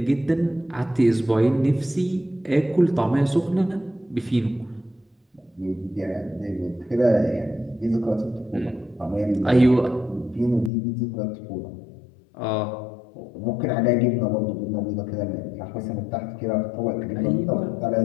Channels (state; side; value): drops out; right; at 10.7 s